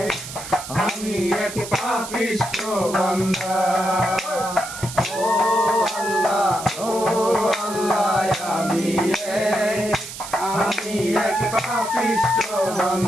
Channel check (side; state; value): right; noise; hiss, 11 dB below the sound